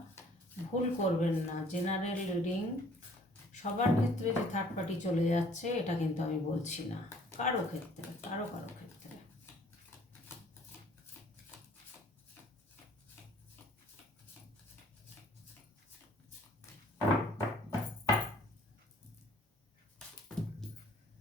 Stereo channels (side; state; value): both; normal; correlation 0.57